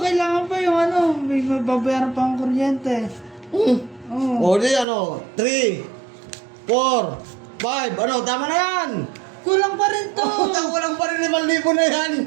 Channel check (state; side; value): drops out; left; at 4.9 s